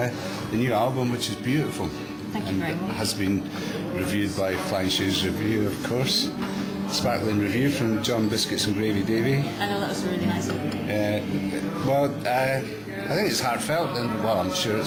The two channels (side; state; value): both; identical; correlation 1.00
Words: new album, which is beautiful. Thank you very much. It has been reviewed by Flying Shoes Review, of course. Sparkling review from John Biscuits and Gravy Davy. I know, that was really nice of you. I think it's heartfelt, and well, I'm sure